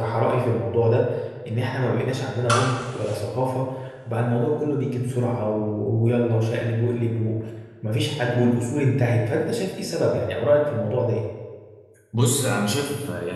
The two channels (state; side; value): identical; both; correlation 1.00